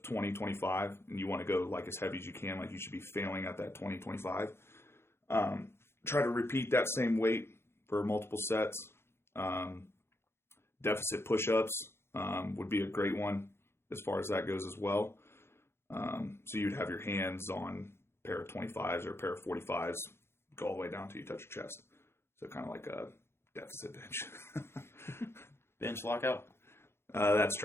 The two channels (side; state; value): right; late; 0.12 ms